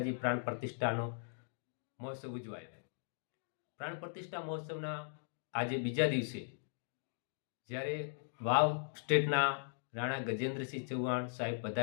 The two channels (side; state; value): right; silent; digital silence